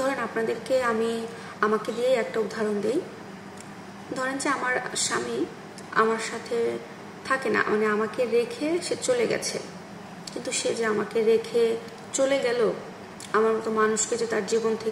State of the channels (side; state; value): both; identical; correlation 1.00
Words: আপনাদেরকে আমাকে দিয়ে একটা উদাহরণ দিই। ধরেন যে আমার স্বামী আমার সাথে থাকে না, মানে আমাকে রেখে সে চলে গেছে, কিন্তু সে যে আমাকে রেখে চলে গেল, আমার মতো মানুষকে যে তার জীবন